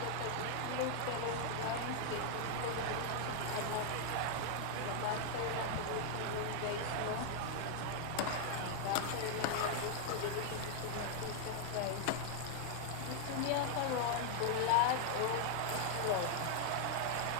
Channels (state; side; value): different; both; correlation 0.00